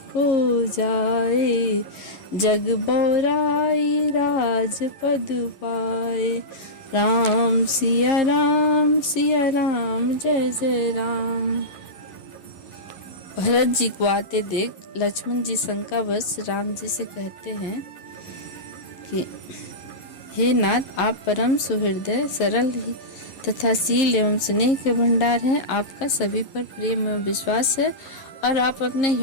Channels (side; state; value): right; late; 11 ms